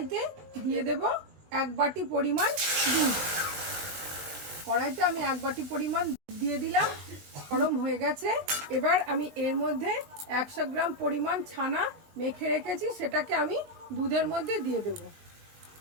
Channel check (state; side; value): late; left; 20 ms